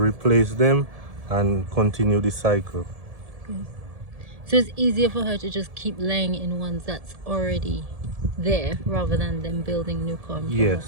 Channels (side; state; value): left; late; 1.7 ms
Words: them and continue the cycle. So it's easier for her to just keep laying in ones that's already there rather than them building new comb.